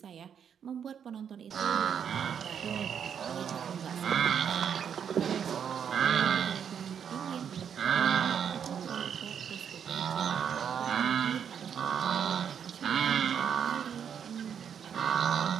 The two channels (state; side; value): quieter; left; 8.0 dB